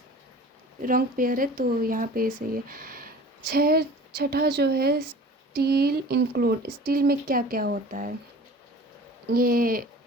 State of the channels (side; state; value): both; normal; correlation 0.43